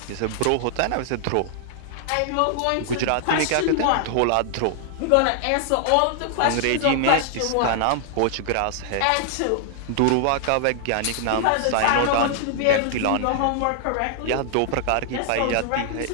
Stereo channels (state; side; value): different; both; correlation 0.00